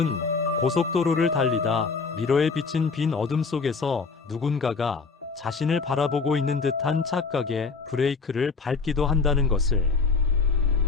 고속도로를 달리다 미러에 비친 빈 어둠 속에서 누군가가 자신을 바라보고 있는 듯한 착각에 브레이크를 밟기도 한다는 것을.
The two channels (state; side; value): quieter; right; 4.7 dB